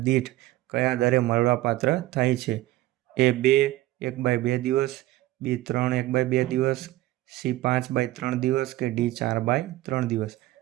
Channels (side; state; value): left; quieter; 16.5 dB